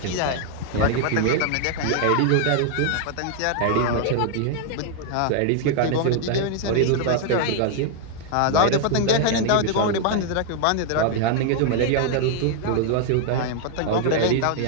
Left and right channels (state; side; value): different; both; correlation 0.00